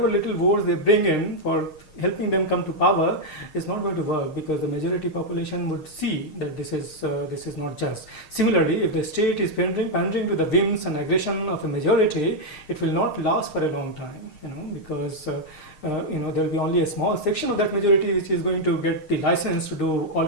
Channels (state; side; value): late; right; 6.5 ms